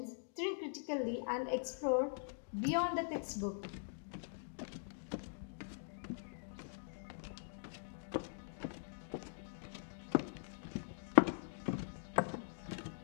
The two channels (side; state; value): right; silent; digital silence